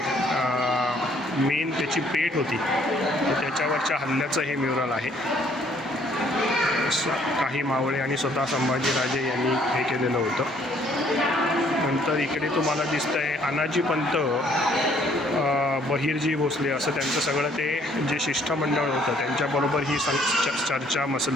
मेन त्याची पेठ होती तर त्याच्यावरच्या हल्ल्याचं हे म्युरल आहे. काही मावळे आणि स्वतः संभाजीराजे यांनी हे केलेलं होतं. नंतर इकडे तुम्हाला दिसतं आहे अनाजी पंत, बहिरजी भोसले असं त्यांचं सगळं ते जे शिष्टमंडळ होतं त्यांच्याबरोबर ही चर्चा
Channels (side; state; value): both; normal; correlation 0.63